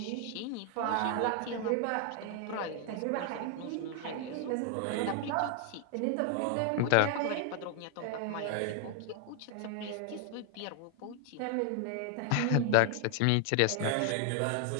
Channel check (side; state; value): both; different; correlation 0.00